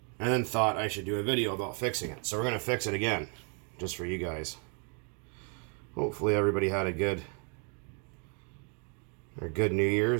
then thought I should do a video about fixing it. So we're going to fix it again, just for you guys. Hopefully everybody had a good New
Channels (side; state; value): left; quieter; 39.2 dB